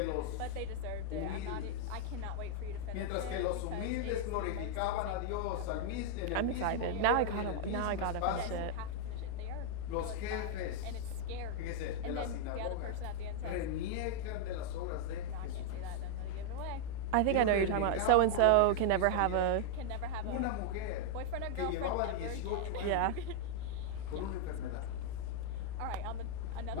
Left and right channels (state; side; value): different; both; correlation -0.01